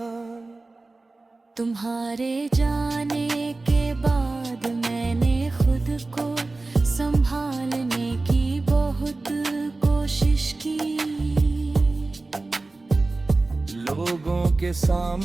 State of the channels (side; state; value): left; quieter; 3.3 dB